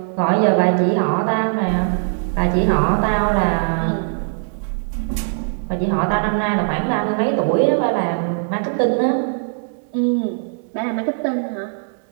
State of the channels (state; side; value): silent; left; 65 dB below the other